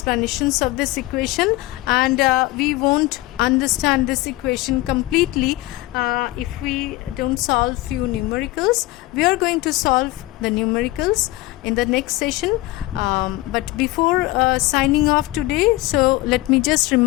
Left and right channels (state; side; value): quieter; right; 19.0 dB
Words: of this equation, and we won't understand this equation completely if we don't solve few numericals. We are going to solve the numericals in the next session, but before signing off today, so let me just